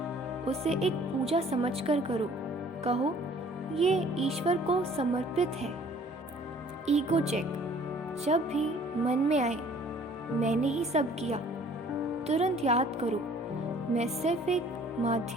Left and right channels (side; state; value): both; normal; correlation 0.55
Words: उसे एक पूजा समझकर करो। कहो, ये ईश्वर को समर्पित है। Ego check. जब भी मन में आए मैंने ही सब किया, तुरंत याद करो, मैं सिर्फ एक